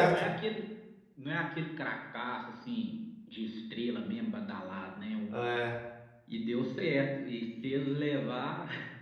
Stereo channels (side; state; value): both; identical; correlation 1.00